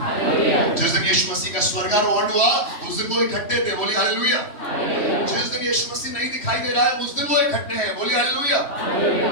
जिस दिन यीशु मसीह का स्वर्गारोहण हुआ उस दिन वो इकट्ठे थे, बोलिए हालेलुया। जिस दिन यीशु मसीह नहीं दिखाई दे रहा है उस दिन वो इकट्ठे हैं, बोलिए हालेलुया।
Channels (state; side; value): late; right; 3.1 ms